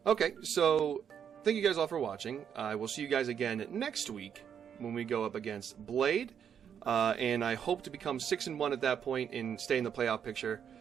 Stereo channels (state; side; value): quieter; left; 8.2 dB